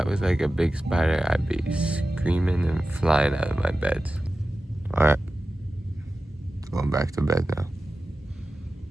was like a big spider, I'd be screaming and flying out of my bed. All right, going back to bed now.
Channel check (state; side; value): normal; both; correlation 0.94